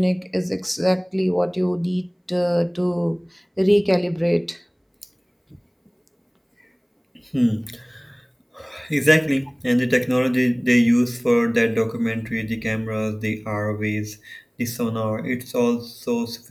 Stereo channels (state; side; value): identical; both; correlation 1.00